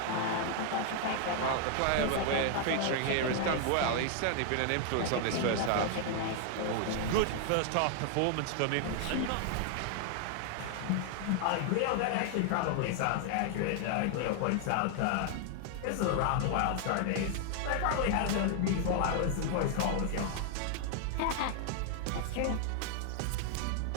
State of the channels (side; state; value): both; different; correlation 0.00